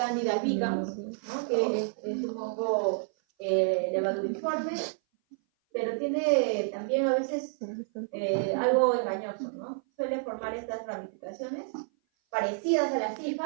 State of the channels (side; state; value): left; silent; 57 dB below the other